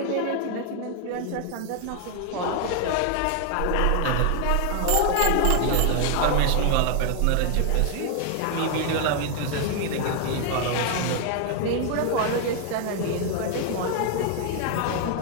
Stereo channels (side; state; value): both; different; correlation 0.00